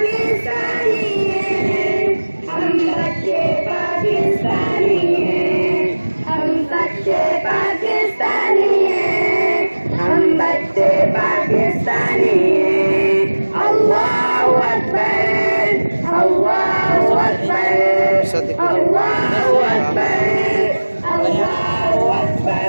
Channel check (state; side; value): inverted; both; correlation -1.00